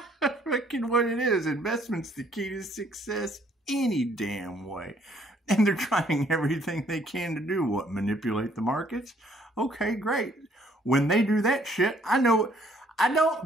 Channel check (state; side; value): normal; both; correlation 0.64